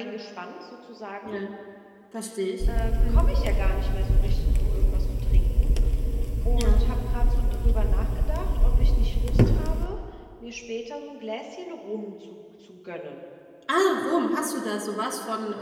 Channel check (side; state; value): both; identical; correlation 1.00